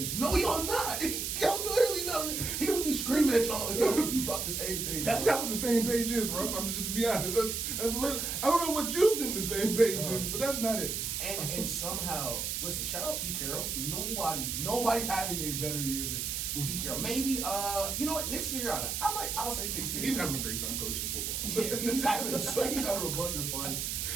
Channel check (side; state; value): right; noise; hiss, 2 dB below the sound